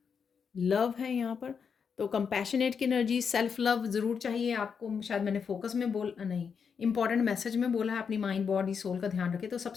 लव है यहाँ पर, तो कंपैशनेट की एनर्जी, सेल्फ लव ज़रूर चाहिए आपको। शायद मैंने फोकस में नहीं, इंपॉर्टेंट मैसेज में बोला है, अपनी माइंड बॉडी सोल का ध्यान रखें। तो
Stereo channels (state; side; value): quieter; right; 6.4 dB